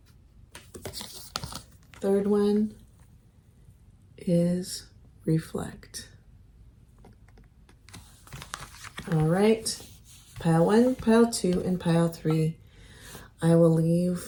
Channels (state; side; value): identical; both; correlation 1.00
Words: Third one is reflect. All right, pile 1, pile 2, and pile 3. I will